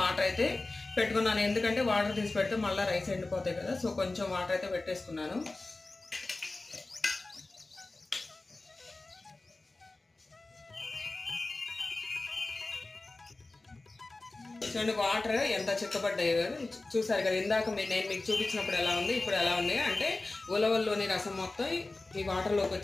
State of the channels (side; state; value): right; quieter; 3.2 dB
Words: అయితే పెట్టుకున్నాను. ఎందుకంటే వాటర్ తీసి పెడితే మళ్ళీ రైస్ ఎండిపోతాయి కదా, సో కొంచెం వాటర్ అయితే పెట్టేసుకున్నాను. చూడండి వాటర్ ఎంత చిక్కబడ్డాయో చూసారు కదా. ఇందాక నేను మీకు చూపించినప్పుడు ఎలా ఉంది, ఇప్పుడు ఎలా ఉంది అంటే ఉలవల్లోని రసం మొత్తం ఈ వాటర్లోకి